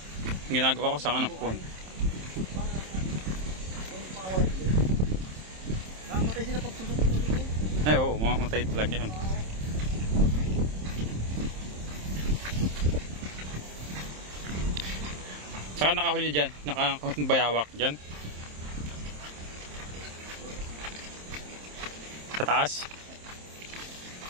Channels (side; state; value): left; late; 27 ms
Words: Yung ginagawa ko sanga ng puno. Mamatay sila pag susok-susok. Ay oo, mamatay talaga yan. Saka nakahuli dyan, nakabayawak dyan. Sa taas.